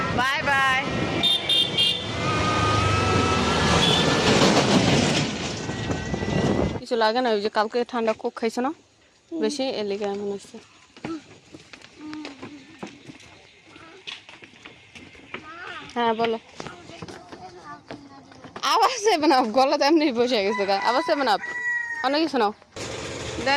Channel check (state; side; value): identical; both; correlation 1.00